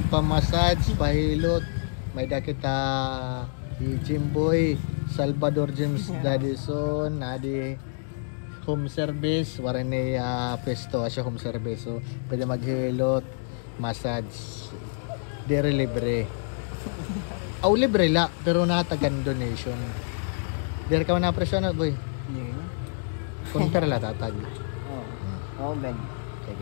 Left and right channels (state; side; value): silent; right; digital silence